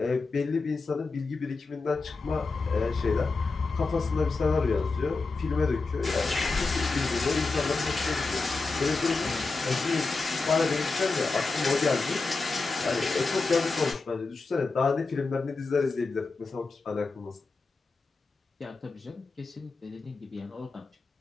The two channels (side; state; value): right; quieter; 3.9 dB